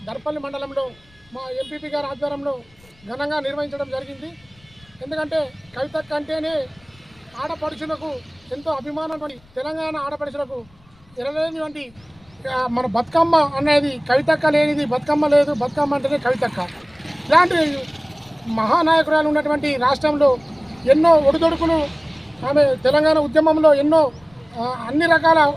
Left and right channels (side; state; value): left; noise; rumble, 30 dB below the sound